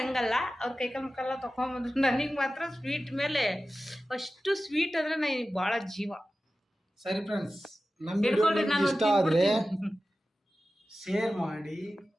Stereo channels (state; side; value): normal; both; correlation 0.94